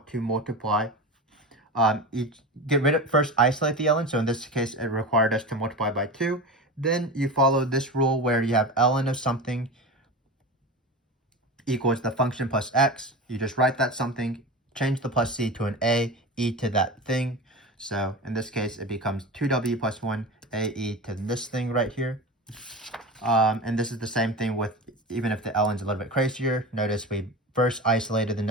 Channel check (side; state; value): both; normal; correlation 0.28